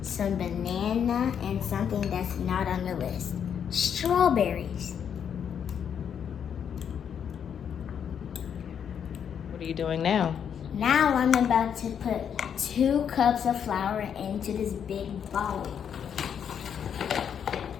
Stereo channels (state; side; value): quieter; right; 8.1 dB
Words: Some banana and something that's not on the list. Strawberries. What are you doing now? Now I'm about to put 2 cups of flour into this big bowl.